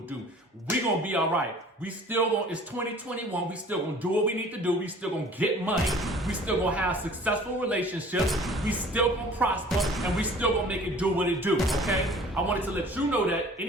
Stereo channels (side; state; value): both; normal; correlation 0.49